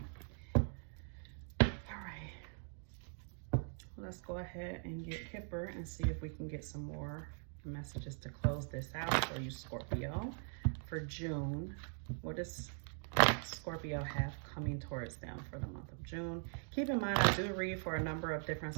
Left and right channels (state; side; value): silent; left; 50 dB below the other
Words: All right. Let's go ahead and get Kipper and see if we can get some more messages to close this out for you, Scorpio. For June, what does Scorpio have coming towards them for the month of June? Keep in mind, I do read for a number of different